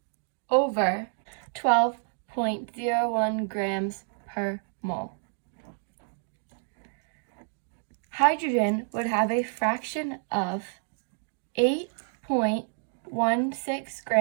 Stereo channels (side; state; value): left; silent; 59 dB below the other